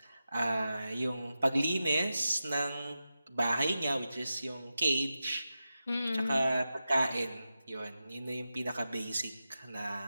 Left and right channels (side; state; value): both; inverted; correlation -0.92